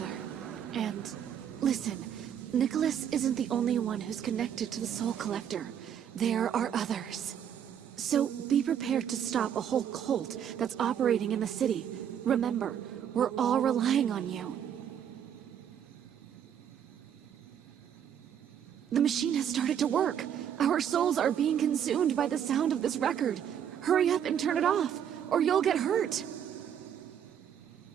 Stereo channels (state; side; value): quieter; left; 9.0 dB